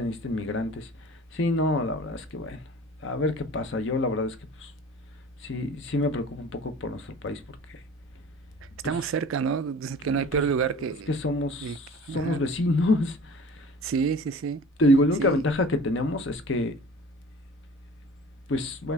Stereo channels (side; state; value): both; normal; correlation 0.43